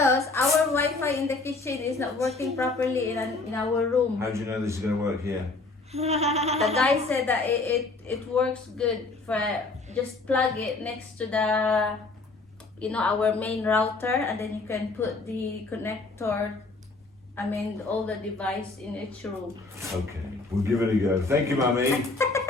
our Wi-Fi in the kitchen is not working properly in our room. How do you know this is gonna work here? The guy said that it works good for just plug it next to the our main router, and then you can put the connector, all the device in each room. Okay, we'll give it a go. Thank you, Mummy.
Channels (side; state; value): right; quieter; 3.5 dB